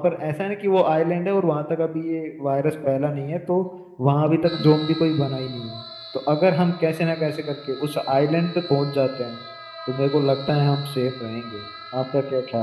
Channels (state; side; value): identical; both; correlation 1.00